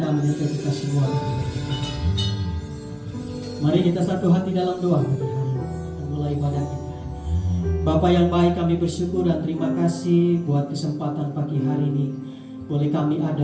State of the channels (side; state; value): both; identical; correlation 1.00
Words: menyertai kita semua. Mari kita satu hati dalam doa pagi hari ini. Kita mulai ibadah kita. Bapa yang baik, kami bersyukur dan terima kasih buat kesempatan pagi hari ini. Boleh kami